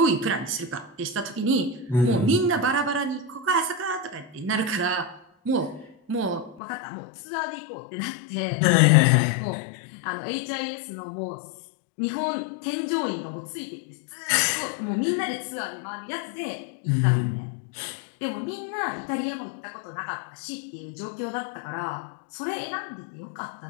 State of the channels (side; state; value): right; drops out; at 6.6 s